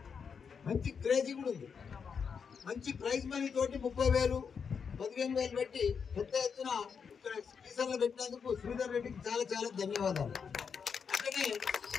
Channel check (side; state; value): right; quieter; 6.3 dB